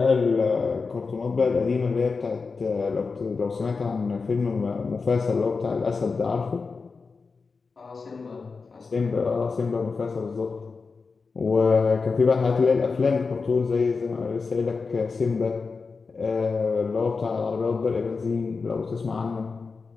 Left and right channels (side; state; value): right; quieter; 4.6 dB